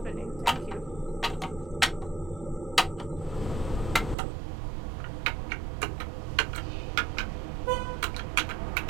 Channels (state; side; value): drops out; left; at 4.2 s